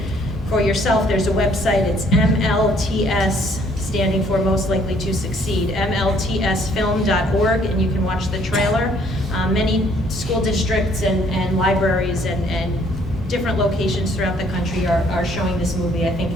for yourself. There's a website. It's MLTS, standing for Most Likely to Succeed, mltsfilm.org, and you can watch the trailer. Many school districts and libraries and different locations throughout the country are showing this movie. I think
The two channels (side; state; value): both; normal; correlation 0.63